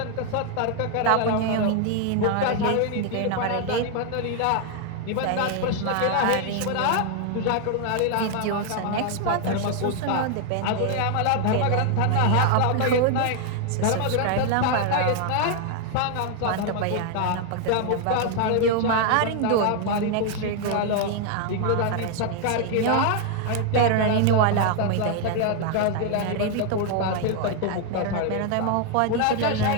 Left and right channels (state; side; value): different; both; correlation 0.00